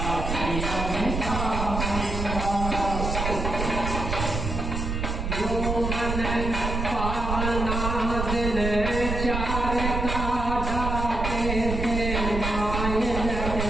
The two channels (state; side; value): noise; right; rumble, 3 dB below the sound